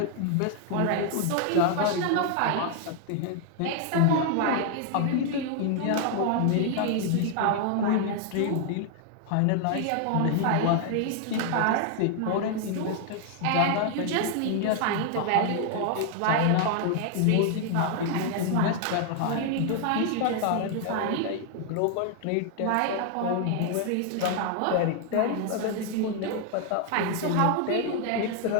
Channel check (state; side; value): different; both; correlation 0.00